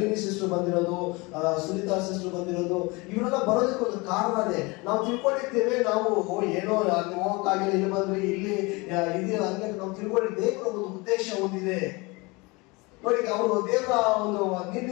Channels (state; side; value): quieter; right; 25.6 dB